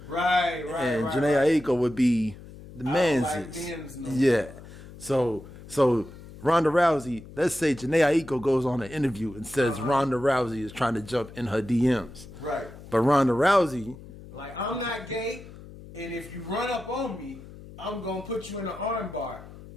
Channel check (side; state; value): left; noise; hum, 17 dB below the sound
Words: Right. And Janae Aiko would be the man's. like Ben's no Yeah. So Ronda Rousey, let's say Janae Aiko goes on an interview and says Ronda Rousey is trying to jump in her DMs. Right. But Ronda Rousey... Like, I'm not gay, and if you run up on me, I'm going to put you in an arm bar.